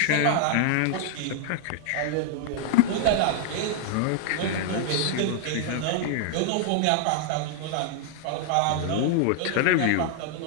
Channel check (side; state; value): both; different; correlation -0.01